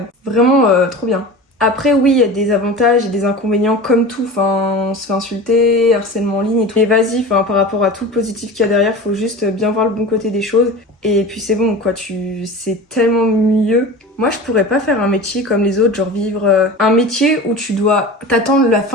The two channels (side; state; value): both; normal; correlation 0.34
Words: Vraiment trop bien. Après oui, il y a des avantages et des inconvénients comme tout, enfin on se fait insulter, harcèlement en ligne et tout. Mais vas-y, enfin par rapport à tout le positif qu'il y a derrière, faut juste bien voir le bon côté des choses. Et puis c'est bon quoi, c'est tellement mieux. Moi je pourrais pas faire un métier comme les autres, genre vivre un métier où tu dois t'attendre la